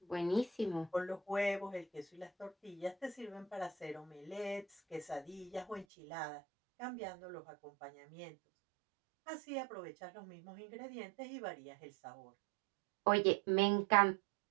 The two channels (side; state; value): left; drops out; at 5.9 s